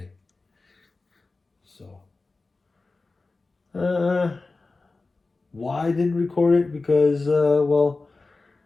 So, why I didn't record it? Because, the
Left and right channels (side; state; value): right; quieter; 3.6 dB